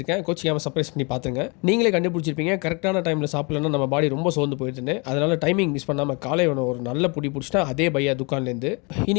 கோச்சிக்காமல் சர்ப்ரைஸ் பண்ணி பார்த்துங்க. நீங்களே கண்டுபிடிச்சிருப்பீங்க, கரெக்டான டைமில் சாப்பிடலன்னா நம்ம பாடி ரொம்ப சோர்ந்து போயிடுதுன்னு. அதனால டைமிங் மிஸ் பண்ணாமல் காலை உணவு ஒரு நல்ல புடி பிடிச்சிட்டா அதே பையா துக்கான்லேருந்து.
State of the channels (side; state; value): right; quieter; 30.9 dB